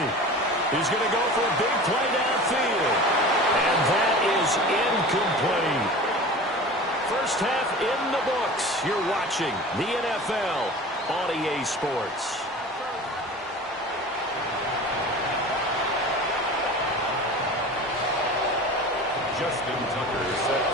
He's going to go for a big play downfield. And that is incomplete. First half in the books. You're watching the NFL on EA Sports. Justin Tucker set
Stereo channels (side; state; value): both; normal; correlation 0.37